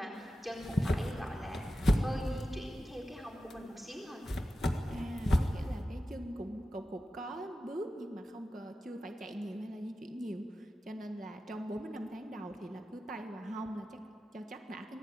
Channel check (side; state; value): both; normal; correlation 0.93